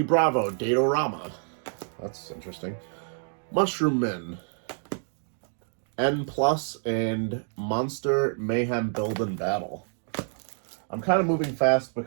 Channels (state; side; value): silent; left; 60 dB below the other